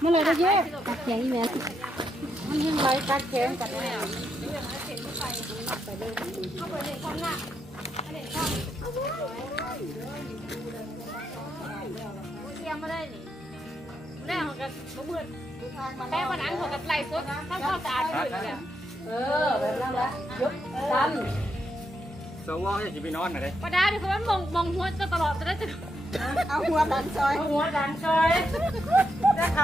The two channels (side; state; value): both; normal; correlation 0.80